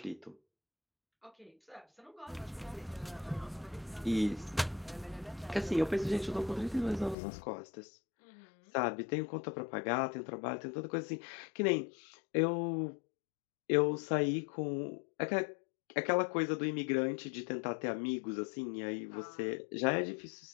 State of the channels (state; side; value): drops out; right; at 7.2 s